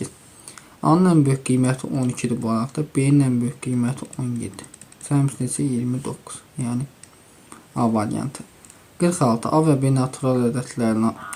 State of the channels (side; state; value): both; identical; correlation 1.00